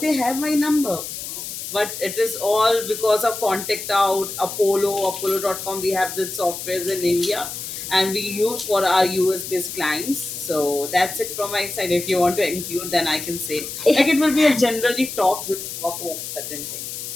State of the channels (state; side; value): noise; left; hiss, 8 dB below the sound